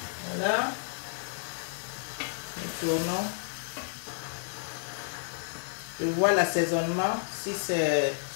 Voilà. Nous tournons. Je vois l'assaisonnement si c'est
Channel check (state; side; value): silent; right; digital silence